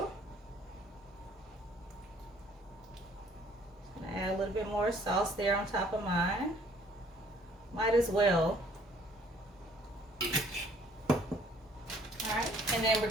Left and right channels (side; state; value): both; normal; correlation 0.59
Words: Add a little bit more sauce there on top of mine. Might as well. Alright, and then we're